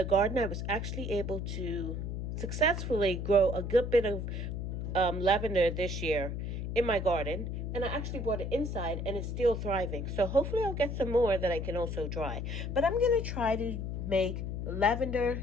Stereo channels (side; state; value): left; noise; hum, 4 dB below the sound